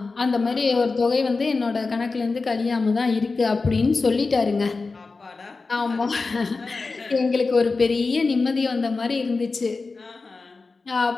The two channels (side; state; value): right; quieter; 4.0 dB